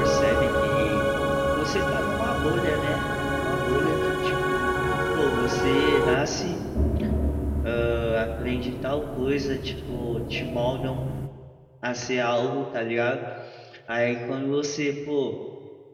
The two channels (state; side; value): identical; both; correlation 1.00